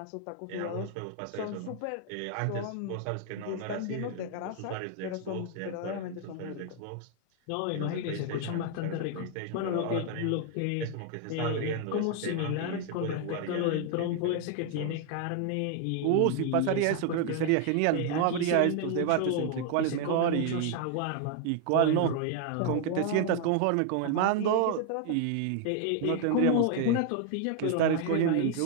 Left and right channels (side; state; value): both; different; correlation 0.00